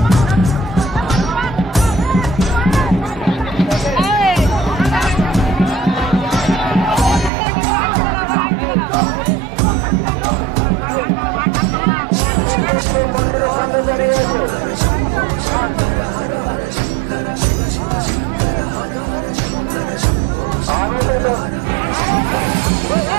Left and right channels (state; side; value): drops out; left; at 7.3 s